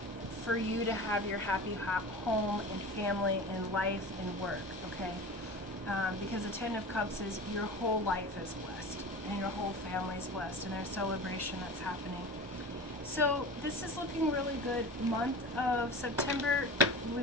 for you to have your happy home and family and life and work, okay? Because the 10 of Cups is your whole life is blessed and your whole family is blessed, and there's celebration that's happening. So this is looking really good. Month of September,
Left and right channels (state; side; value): normal; both; correlation 0.33